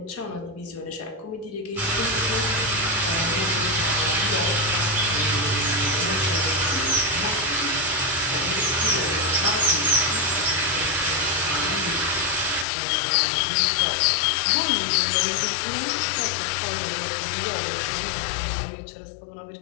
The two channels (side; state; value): right; drops out; at 12.7 s